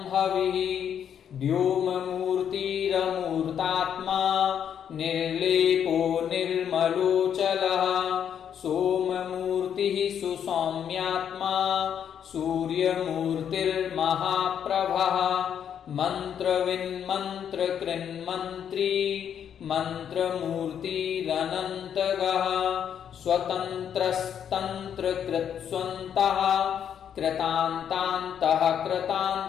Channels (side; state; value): right; quieter; 8.7 dB